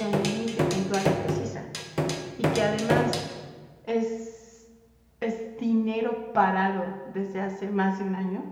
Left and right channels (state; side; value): identical; both; correlation 1.00